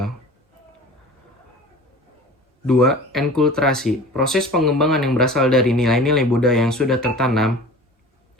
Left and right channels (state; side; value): normal; both; correlation 0.40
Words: 2. Enkulturasi. Proses pengembangan yang berasal dari nilai-nilai budaya yang sudah tertanam